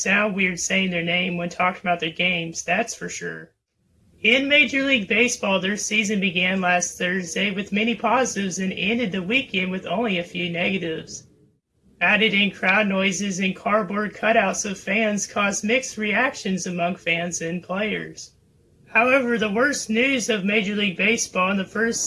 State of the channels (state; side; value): identical; both; correlation 1.00